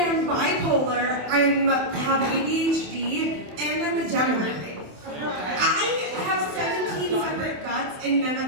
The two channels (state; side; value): late; left; 28 ms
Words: bipolar, I have ADHD, and I'm a Gemini. I have 17 separate guts, and none